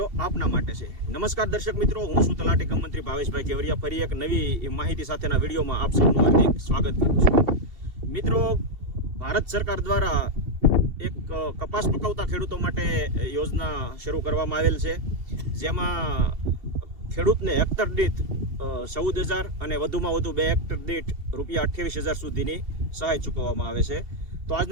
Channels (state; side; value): late; left; 2.7 ms